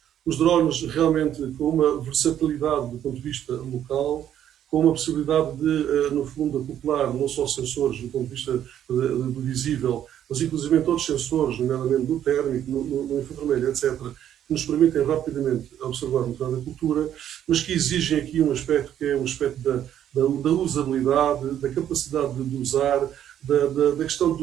Os drones realmente com uma versatilidade do ponto de vista local, com uma possibilidade de, no fundo, acoplar não só sensores do ponto de vista do visível, mas inclusive outros sensores, nomeadamente do térmico, no infravermelho, etc., que nos permitem rapidamente observar o estado da cultura, mas que exigem aqui um aspecto que é um aspecto da usabilidade, da capacidade de usar, da questão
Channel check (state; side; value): quieter; left; 10.5 dB